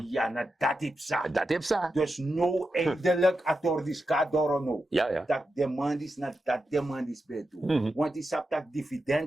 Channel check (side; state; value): both; normal; correlation 0.89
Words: Ja, na dat is sa. Dat heeft ze. Dus no eindelijk atordis kadoro no. Ja. Dat demand is na dat demand is bij toe. Want die sap dat